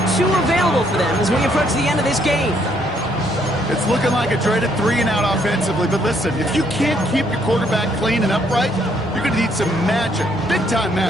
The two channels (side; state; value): both; normal; correlation 0.69